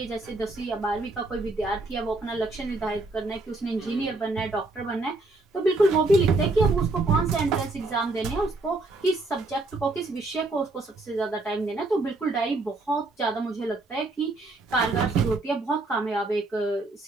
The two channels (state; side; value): quieter; left; 3.1 dB